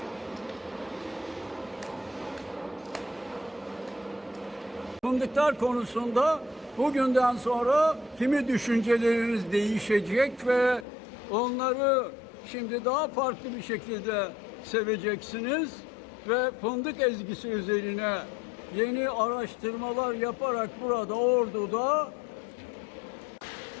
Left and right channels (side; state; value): right; drops out; at 10.9 s